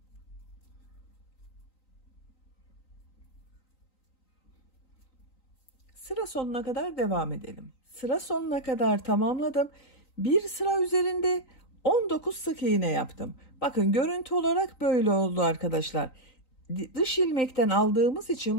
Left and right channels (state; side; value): late; right; 3.9 ms